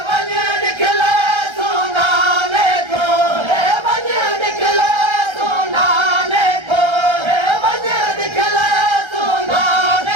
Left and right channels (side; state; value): left; late; 1.3 ms